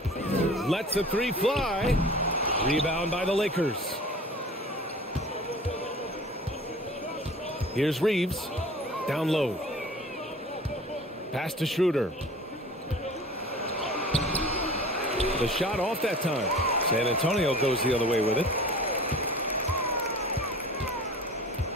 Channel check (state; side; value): normal; both; correlation 0.42